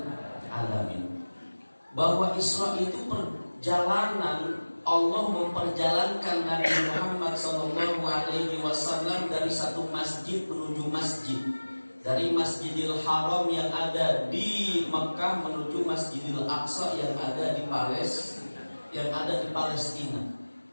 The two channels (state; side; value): inverted; both; correlation -1.00